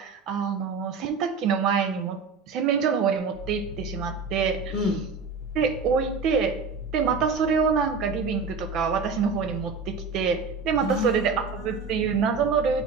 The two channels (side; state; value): left; quieter; 4.9 dB